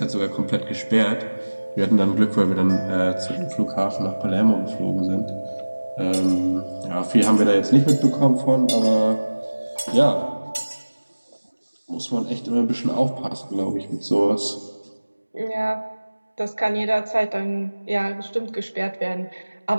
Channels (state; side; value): inverted; both; correlation -1.00